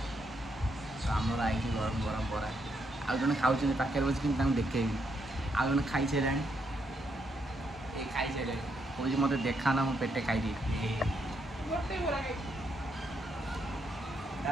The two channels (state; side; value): normal; both; correlation 0.77